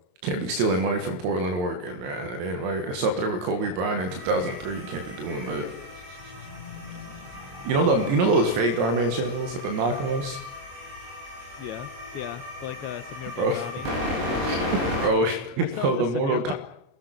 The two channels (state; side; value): late; left; 22 ms